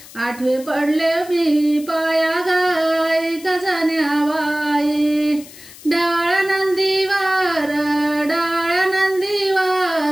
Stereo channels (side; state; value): left; noise; hiss, 19 dB below the sound